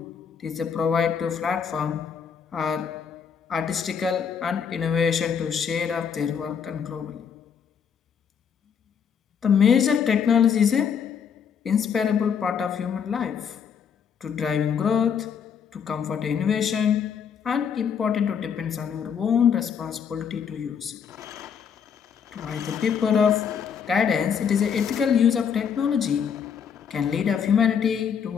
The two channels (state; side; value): quieter; right; 7.3 dB